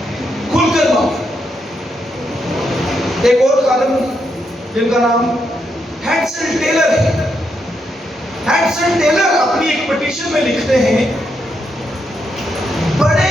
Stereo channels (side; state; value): both; normal; correlation 0.80